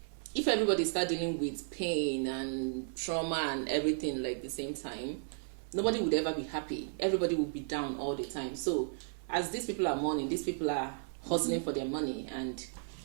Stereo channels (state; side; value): silent; left; 55 dB below the other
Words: if everybody start dealing with pain and trauma and everything like the same time, nobody would ever be happy. Everybody would be down all the time. So as these people are mourning, these people are hustling for their money, and